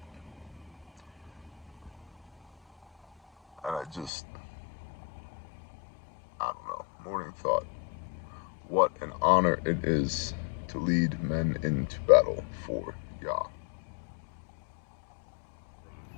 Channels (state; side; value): drops out; right; at 4.1 s